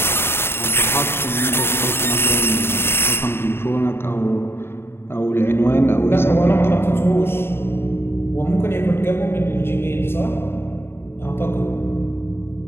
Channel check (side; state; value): right; late; 0.11 ms